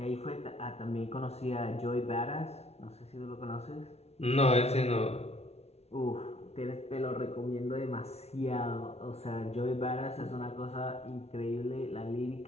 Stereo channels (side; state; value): right; late; 0.31 ms